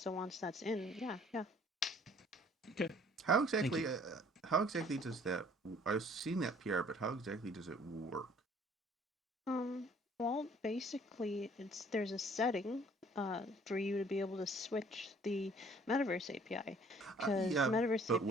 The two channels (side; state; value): both; normal; correlation 0.57